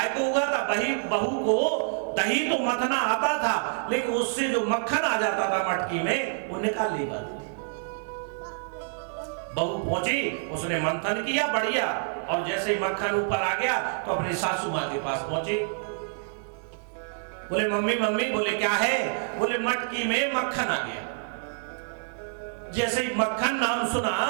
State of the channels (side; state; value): left; silent; digital silence